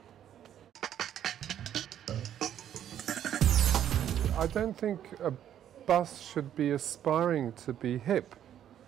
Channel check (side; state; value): left; quieter; 10.4 dB